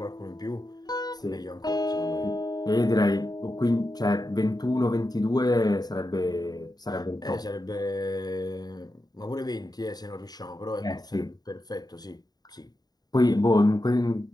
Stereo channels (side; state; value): right; late; 0.19 ms